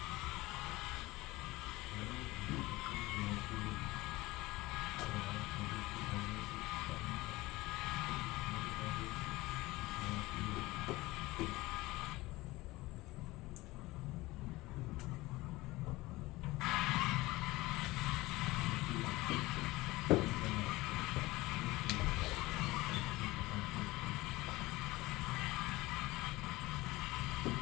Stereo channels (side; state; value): right; quieter; 20.0 dB